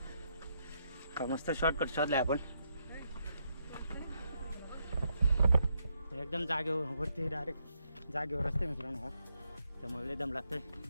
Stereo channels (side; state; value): both; inverted; correlation -0.77